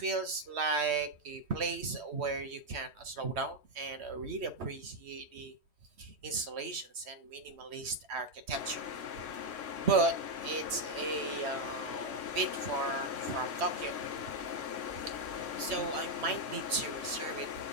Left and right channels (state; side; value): late; left; 3.1 ms